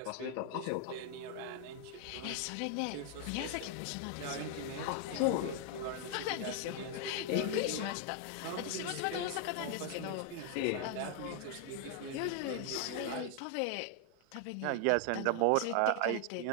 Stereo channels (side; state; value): both; different; correlation 0.00